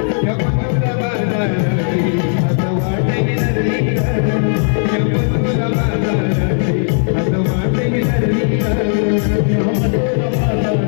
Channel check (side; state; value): right; silent; 60 dB below the other